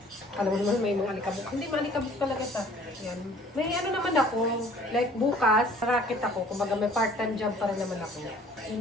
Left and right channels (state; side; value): normal; both; correlation 0.53